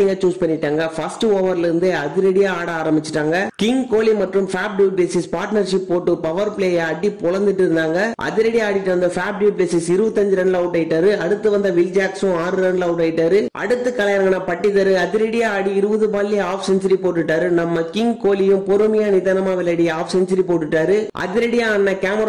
சூஸ் பண்ணிட்டாங்க. ஃபர்ஸ்ட் ஓவர்ல இருந்து அதிரடியா ஆட ஆரம்பிச்சிட்டாங்க. கிங் கோலி மற்றும் ஃபேப் டு பிளேசிஸ் பார்ட்னர்ஷிப் போட்டு பவர் பிளேயை அடி பொளந்துட்டு இருந்தாங்க. அதிரடி ஆடிட்டு வந்த ஃபேப் டு பிளேசிஸ் 25 ரன்ல அவுட் ஆயிட்டாரு. அடுத்து வந்த வில் ஜாக்ஸும் 6 ரன்ல அவுட் ஆயிட்டாரு. அடுத்து கலையரங்கன பட்டிதர் அதிரடியா ஆடி 20 பால்ல ஆஃப் செஞ்சுரி போட்டுட்டாரு. நம்ம கிங் கோலியும் பொறுமையா நிதானமா விளையாடி ஆஃப் செஞ்சுரி போட்டுட்டாரு. அதிரடியா ஆன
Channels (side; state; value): both; identical; correlation 1.00